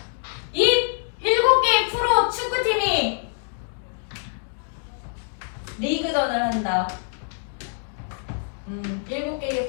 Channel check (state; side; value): silent; right; 62 dB below the other